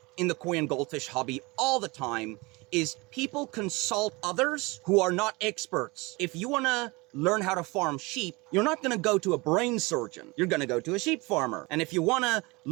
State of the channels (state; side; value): quieter; left; 24.8 dB